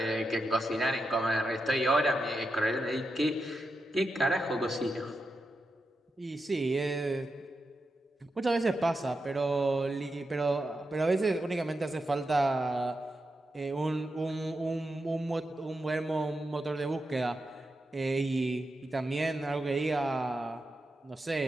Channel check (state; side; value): normal; both; correlation 0.87